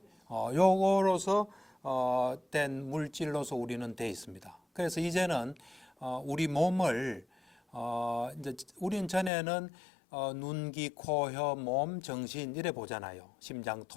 요거로서 된 물질로서 우리는 돼 있습니다. 그래서 이제는 우리 몸을 이제 우리는 전에는 눈, 귀, 코, 혀, 몸, 정신 이래 보잖아요. 심장,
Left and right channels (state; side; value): drops out; right; at 9.3 s